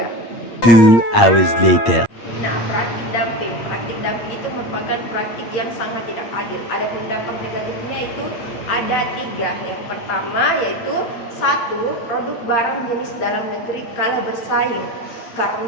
2 hours later. Nah, praktik dumping itu merupakan praktik yang sangat tidak adil. Ada dampak negatifnya itu ada 3. Yang pertama yaitu 1. Produk barang jenis dalam negeri kalah bersaing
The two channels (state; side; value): late; right; 8.6 ms